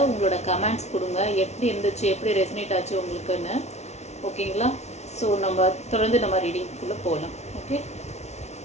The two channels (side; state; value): right; late; 0.32 ms